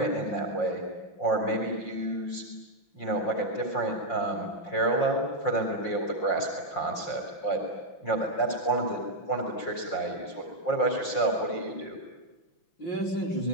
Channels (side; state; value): right; late; 5.7 ms